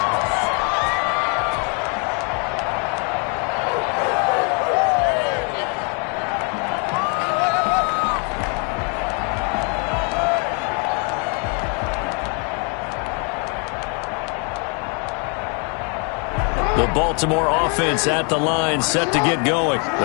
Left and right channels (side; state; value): right; quieter; 36.5 dB